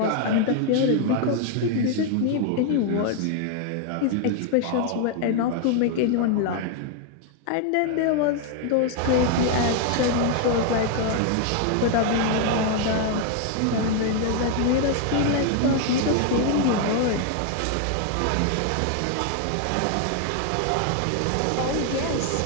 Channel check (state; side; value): different; both; correlation 0.00